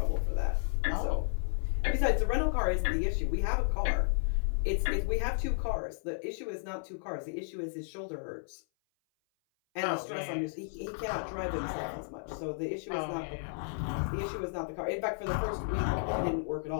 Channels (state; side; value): silent; right; 56 dB below the other